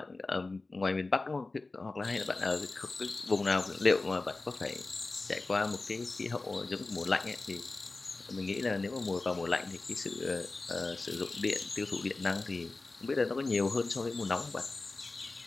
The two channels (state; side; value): quieter; right; 3.4 dB